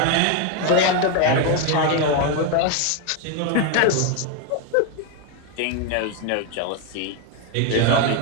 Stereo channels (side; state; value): both; different; correlation 0.02